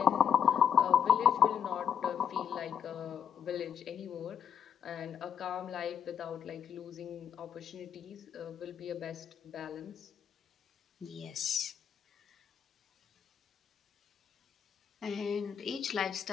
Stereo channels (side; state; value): right; quieter; 8.2 dB